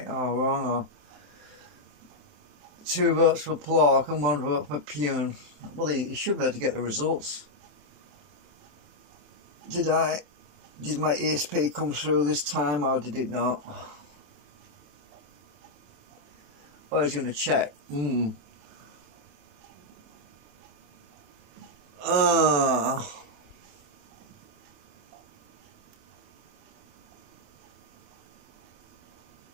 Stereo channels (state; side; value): late; left; 27 ms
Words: or wrong. Or 2 votes for Plork and 1 vote for Pune. Well, he should be able to get the results. Did my ESP come through this time, or did it not? Oh, he's going to check. Ah.